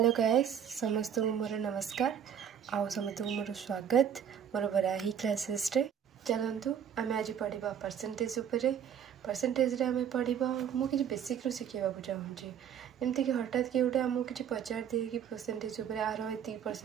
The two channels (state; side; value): quieter; left; 8.5 dB